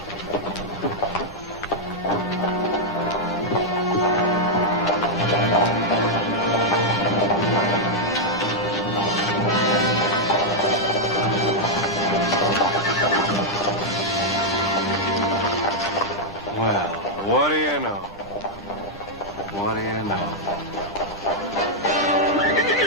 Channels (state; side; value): noise; right; rumble, 21 dB below the sound